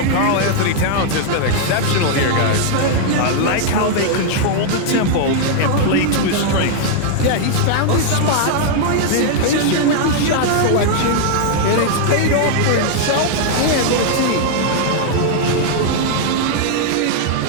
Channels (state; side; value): different; both; correlation 0.00